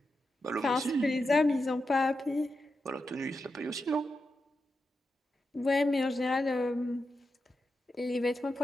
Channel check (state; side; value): normal; both; correlation 0.88